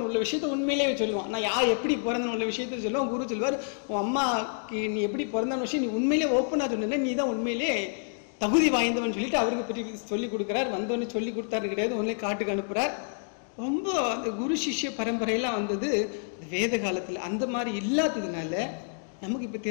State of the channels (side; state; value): right; silent; digital silence